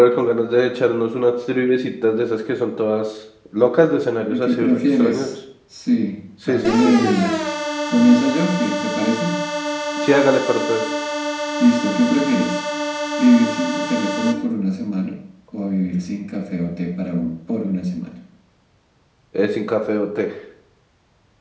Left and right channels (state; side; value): identical; both; correlation 1.00